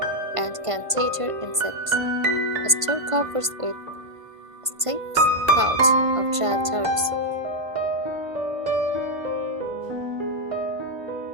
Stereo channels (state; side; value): late; left; 1.5 ms